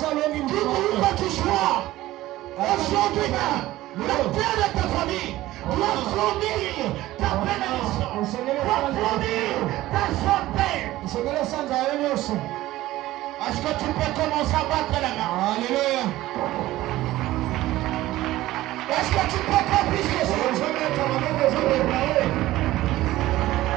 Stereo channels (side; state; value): left; quieter; 16.3 dB